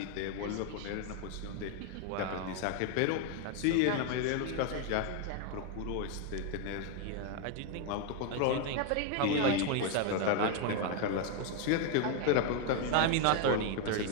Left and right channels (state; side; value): different; both; correlation 0.00